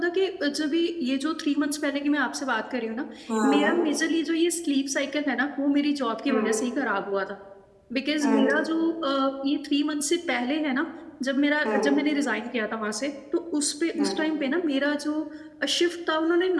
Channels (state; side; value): identical; both; correlation 1.00